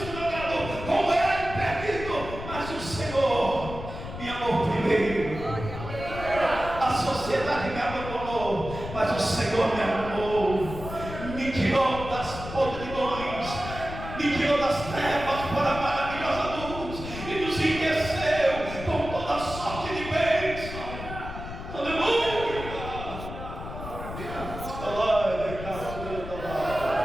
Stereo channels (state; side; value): noise; left; rumble, 9 dB below the sound